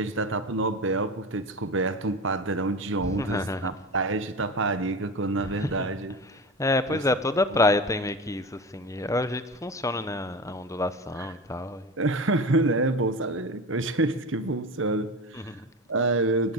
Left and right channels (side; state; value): both; normal; correlation 0.28